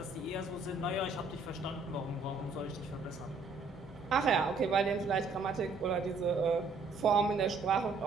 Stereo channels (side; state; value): left; quieter; 4.1 dB